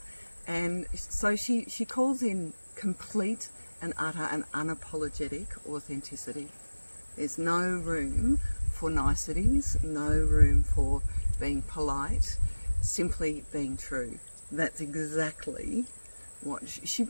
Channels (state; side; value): inverted; both; correlation -1.00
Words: And so she calls in complete and utter and unapologetic authenticity. There's no room for niceties, no room for being polite, simply being true. That's exactly what she